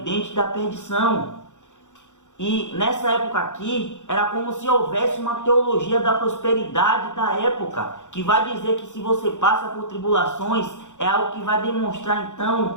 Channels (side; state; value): right; late; 0.85 ms